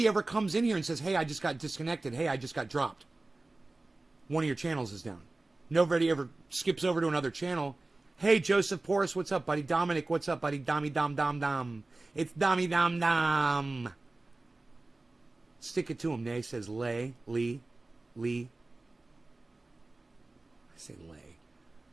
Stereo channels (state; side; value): quieter; left; 3.1 dB